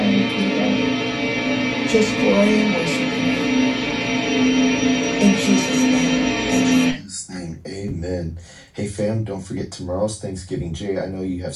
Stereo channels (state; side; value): identical; both; correlation 1.00